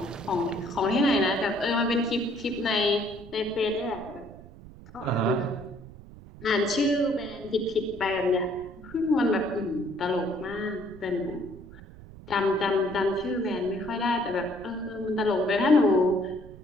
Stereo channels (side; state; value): right; noise; rumble, 18 dB below the sound